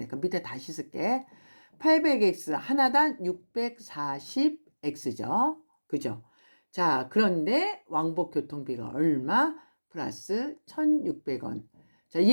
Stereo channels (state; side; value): inverted; both; correlation -1.00